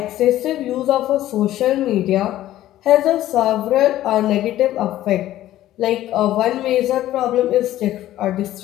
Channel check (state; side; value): quieter; right; 13.9 dB